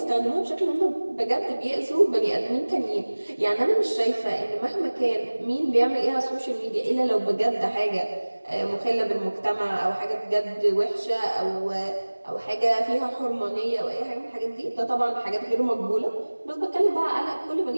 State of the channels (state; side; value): inverted; both; correlation -1.00